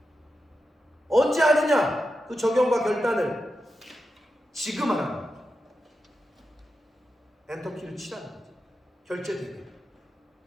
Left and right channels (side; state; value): both; normal; correlation 0.89